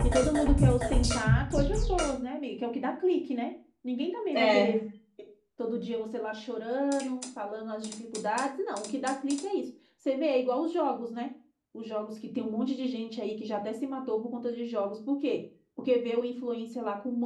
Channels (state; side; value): identical; both; correlation 1.00